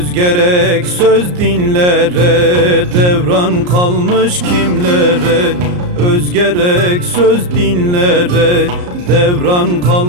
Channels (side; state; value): left; late; 34 ms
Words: gerek söz dinlere, devran kalmış kimlere? Öz gerek söz dinlere, devran